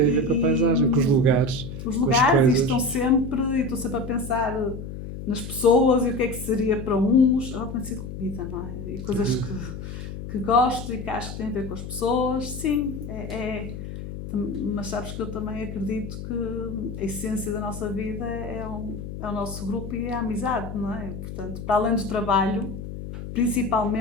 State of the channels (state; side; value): noise; left; hum, 9 dB below the sound